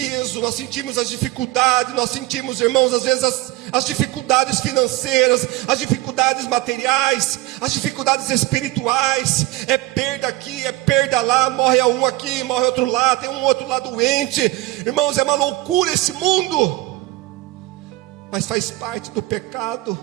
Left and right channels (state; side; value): quieter; left; 18.1 dB